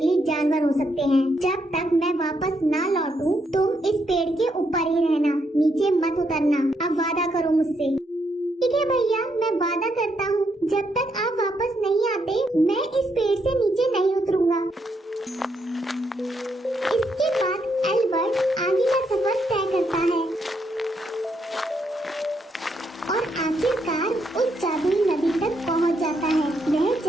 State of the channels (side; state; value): both; normal; correlation 0.77